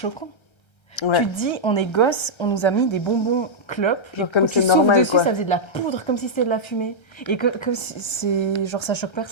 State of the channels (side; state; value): right; late; 1.3 ms